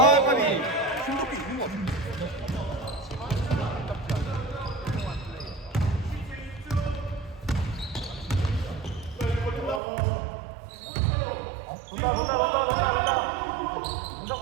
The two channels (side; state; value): left; drops out; at 9.8 s